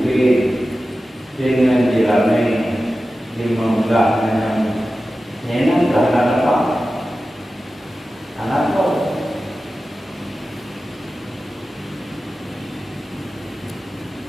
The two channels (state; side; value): normal; both; correlation 0.94